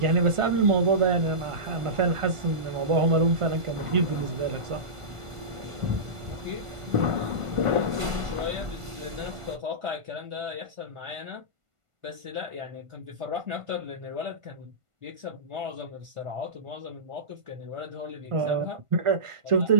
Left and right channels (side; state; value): left; late; 1.5 ms